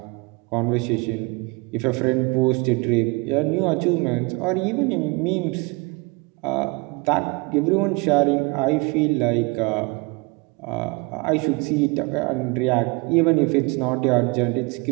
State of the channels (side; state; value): left; quieter; 28.0 dB